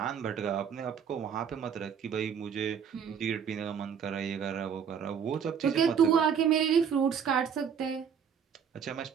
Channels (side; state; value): left; quieter; 7.4 dB